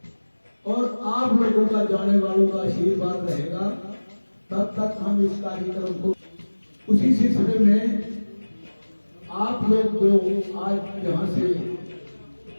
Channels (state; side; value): inverted; both; correlation -1.00